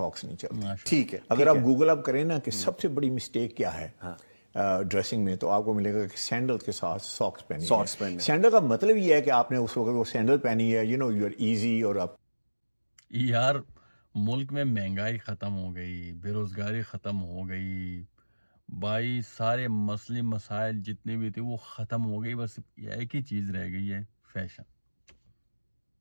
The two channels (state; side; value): inverted; both; correlation -1.00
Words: نہیں چلتی. ٹھیک ہے, اگر آپ گوگل اپ کریں نا کہ سب سے بڑی مسٹیک کیا ہے ڈریسنگ میں, تو آپ کو ملے گا کہ سینڈل کے ساتھ ساکس پہنی. سینڈل کا مطلب یہ ہے کہ آپ نے اس وقت وہ سینڈل پہنی ہے, یو آر ایزی. اور آپ یار ملک میں مہنگائی ختم ہو گئی, بے روزگاری ختم ہو گئی بھائی, سارے مسئلے مسائل جتنے بھی تھے وہ ختم ہو گئی. بس ایک ہی چیز رہ گئی ہے, فیشن.